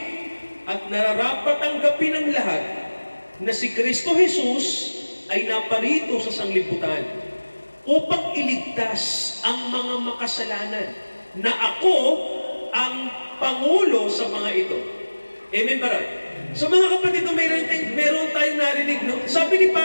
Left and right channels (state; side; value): inverted; both; correlation -1.00